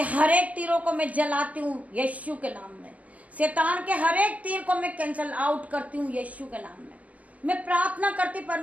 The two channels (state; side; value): late; left; 0.074 ms